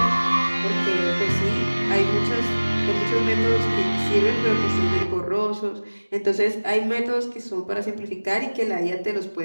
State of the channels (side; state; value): both; inverted; correlation -1.00